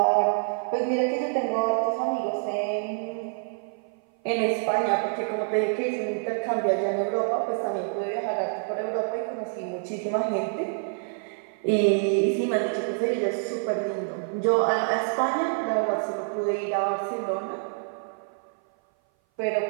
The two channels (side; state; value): left; silent; 57 dB below the other